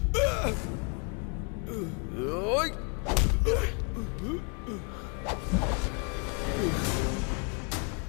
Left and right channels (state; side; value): quieter; right; 35.8 dB